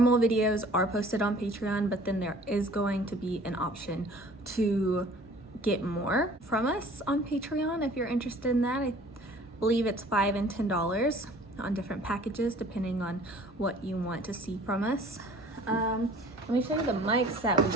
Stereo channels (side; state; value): both; normal; correlation 0.50